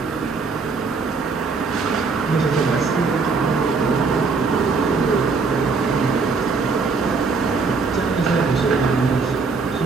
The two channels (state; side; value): quieter; left; 4.6 dB